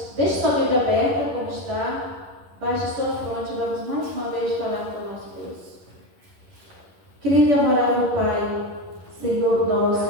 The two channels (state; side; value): late; left; 11 ms